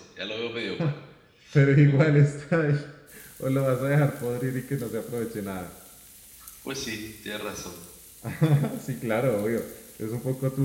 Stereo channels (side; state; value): both; identical; correlation 1.00